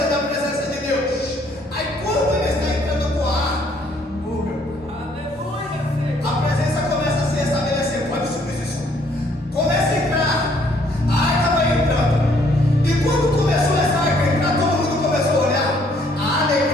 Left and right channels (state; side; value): normal; both; correlation 0.65